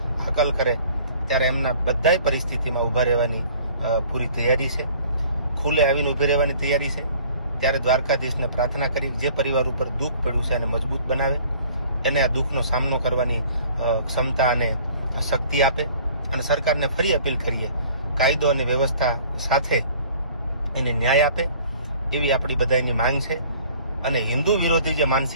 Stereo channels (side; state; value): both; inverted; correlation -0.52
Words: હકલ કરે ત્યારે એમના બધાય પરિસ્થિતિમાં ઊભા રહેવાની પૂરી તૈયારી છે. ખુલ્લે આવીને ઊભી રહેવાની તૈયારી છે. ત્યારે દ્વારકાધીશને પ્રાર્થના કરી જે પરિવાર ઉપર દુઃખ પડ્યું છે એને મજબૂત બનાવે, એને આ દુઃખનો સામનો કરવાની ક્ષમતા અને શક્તિ આપે. અને સરકારને ફરી અપીલ કરીએ, કાયદો અને વ્યવસ્થા સાથે એને ન્યાય આપે, એવી આપણી બધાની માંગ છે. અને હિન્દુ વિરોધી જે